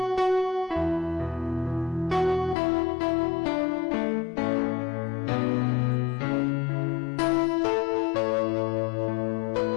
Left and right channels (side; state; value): right; drops out; at 2.6 s